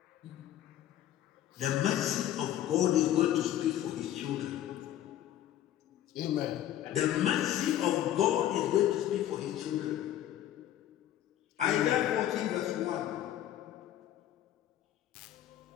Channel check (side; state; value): right; quieter; 12.2 dB